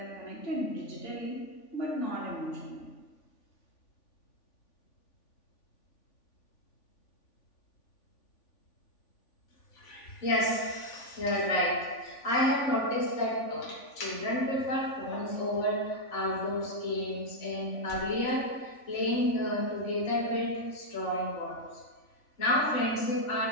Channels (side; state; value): right; late; 3.5 ms